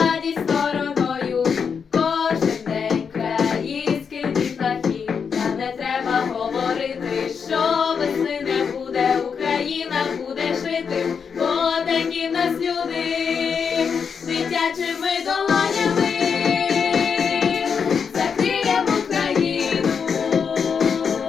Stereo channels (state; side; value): quieter; right; 6.3 dB